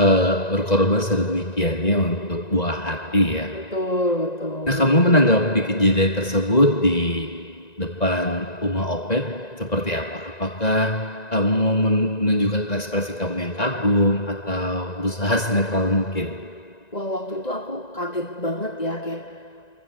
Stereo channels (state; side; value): late; right; 1.9 ms